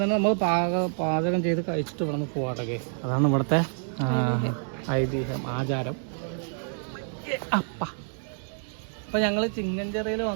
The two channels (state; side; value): silent; left; digital silence